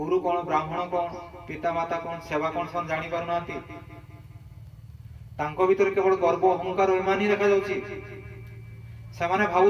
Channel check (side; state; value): both; identical; correlation 1.00